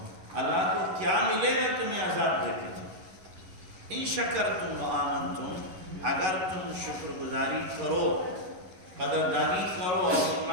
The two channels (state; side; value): late; left; 11 ms